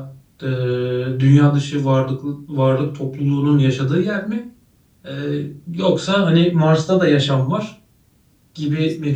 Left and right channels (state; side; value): identical; both; correlation 1.00